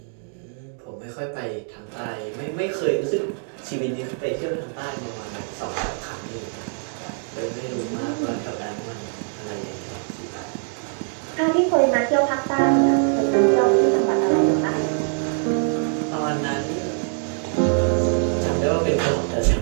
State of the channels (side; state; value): left; silent; 58 dB below the other